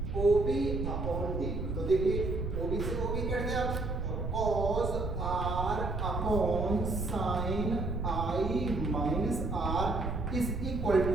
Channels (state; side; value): noise; right; rumble, 4 dB below the sound